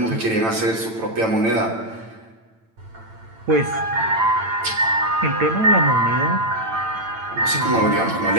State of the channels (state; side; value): late; left; 9.0 ms